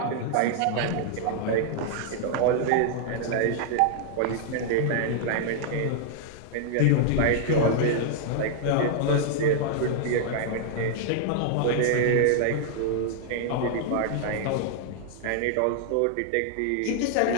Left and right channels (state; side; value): different; both; correlation 0.00